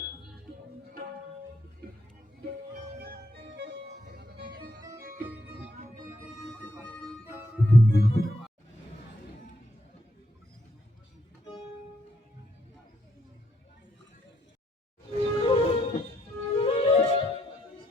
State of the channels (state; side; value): normal; both; correlation 0.74